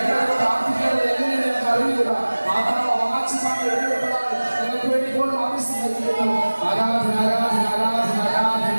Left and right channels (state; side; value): inverted; both; correlation -1.00